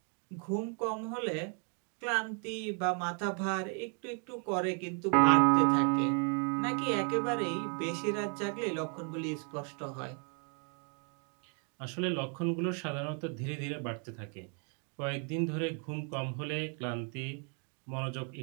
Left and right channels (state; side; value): quieter; left; 39.9 dB